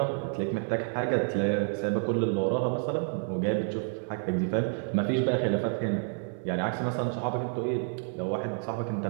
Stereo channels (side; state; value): left; silent; 58 dB below the other